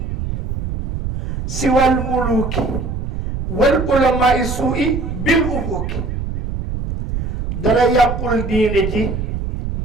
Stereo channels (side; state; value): right; noise; rumble, 3 dB below the sound